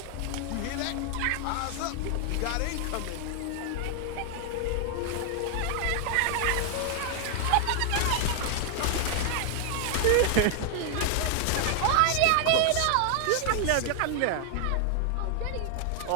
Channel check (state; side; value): different; both; correlation 0.00